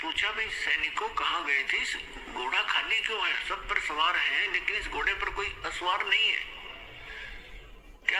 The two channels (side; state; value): both; identical; correlation 1.00